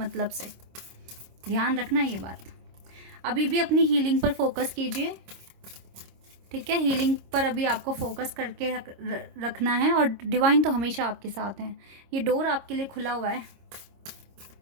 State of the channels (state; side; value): late; left; 26 ms